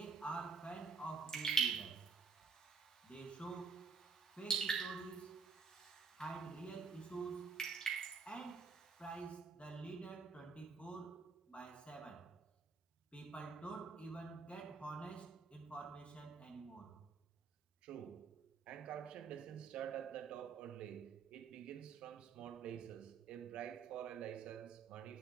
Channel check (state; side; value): quieter; left; 5.1 dB